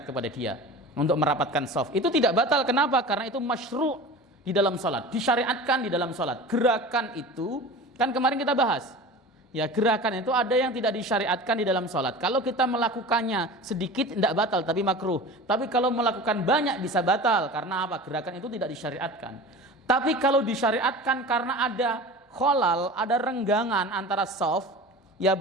kepada dia, untuk merapatkan shaf. Itu tidak batal. Kenapa? Karena itu masyru' di dalam sholat, disyariatkan di dalam sholat. Gerakan itu kan kemarin kita bahas. Ya, gerakan itu ada yang tidak disyariatkan di dalam sholat. Kalau kita melakukannya sedikit tidak batal tapi makruh. Tapi kalau melakukan banyak bisa batal. Karena apa? Gerakan itu tidak disyariatkan. Tapi kalau disyariatkan karena ada kholal, ada renggangan antara shaf, ya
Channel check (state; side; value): normal; both; correlation 0.35